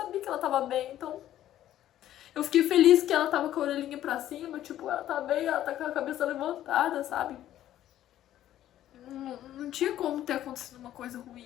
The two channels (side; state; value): right; quieter; 12.5 dB